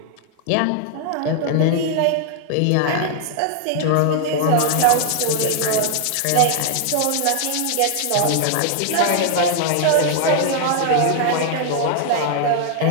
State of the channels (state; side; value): different; both; correlation 0.00